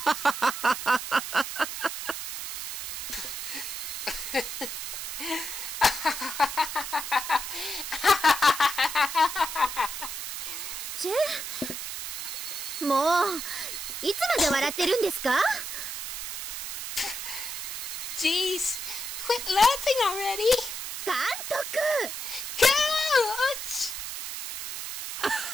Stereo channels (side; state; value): right; noise; hiss, 5 dB below the sound